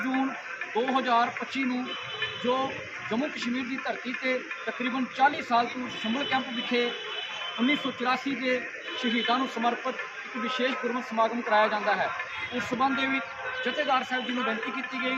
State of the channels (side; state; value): both; identical; correlation 1.00